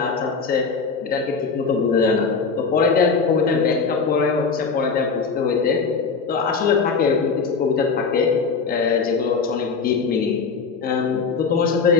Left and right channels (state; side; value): quieter; right; 5.1 dB